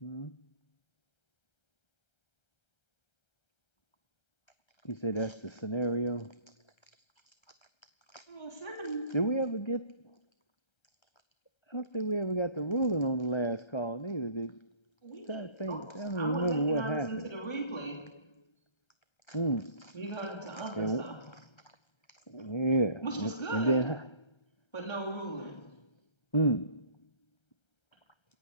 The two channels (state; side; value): late; right; 1.3 ms